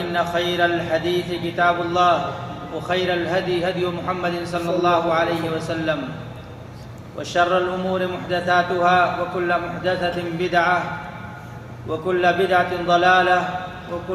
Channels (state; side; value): identical; both; correlation 1.00